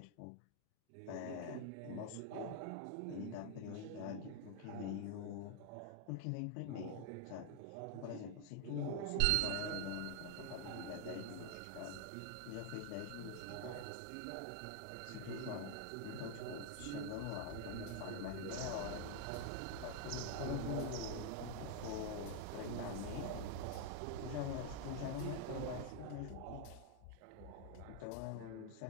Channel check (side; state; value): both; different; correlation 0.00